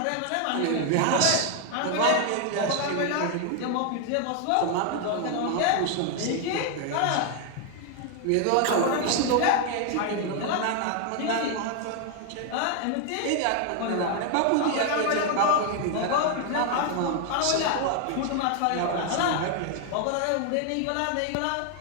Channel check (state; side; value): different; both; correlation 0.00